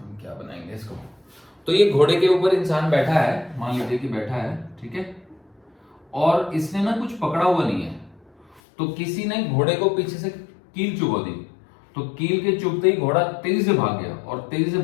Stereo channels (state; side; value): drops out; right; at 8.6 s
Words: क्या बनाएंगे इसको। तो ये घोड़े के ऊपर इंसान बैठा है, मान लीजिए कि बैठा है, ठीक है, और इसने ना कुछ पकड़ा हुआ नहीं है, तो किसी ने घोड़े को पीछे से कील चुभा दी, तो कील के चुभते ही घोड़ा तेजी से भाग गया, और तेजी से